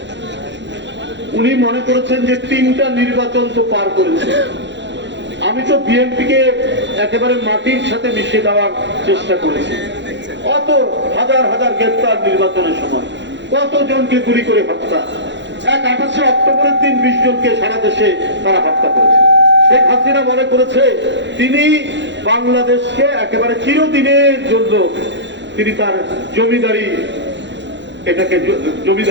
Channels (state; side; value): late; left; 0.52 ms